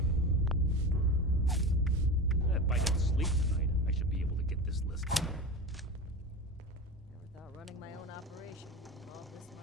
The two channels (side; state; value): both; normal; correlation 0.27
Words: If I don't sleep tonight, I should be able to get this list. Never thought running my own operation would involve this